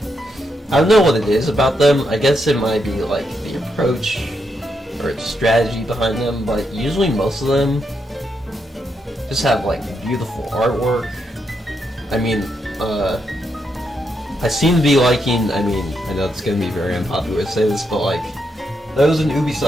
I don't know what it is about them. I guess it might be like the approach or the strategy behind them, but usually most of them just have like beautiful artwork. I mean, I seem to be liking, I mean, I know it's gonna be very unpopular to say this, but like, there was an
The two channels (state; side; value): normal; both; correlation 0.81